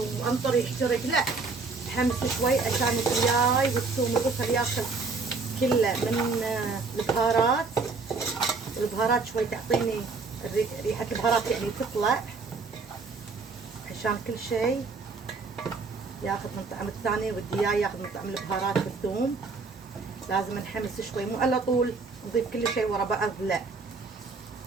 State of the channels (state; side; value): quieter; left; 4.3 dB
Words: يحترق، لا حمس شوي عشان الدياي والثوم والبصل ياخذ كله من البهارات. البهارات شوي تعطيني ريحة البهارات يعني تطلع، عشان كل شيء ياخذ من طعم الثاني، والدياي ياخذ من طعم البهارات والثوم. لازم نحمس شوي، مو على طول نضيف كل شيء ورا بعض، لا.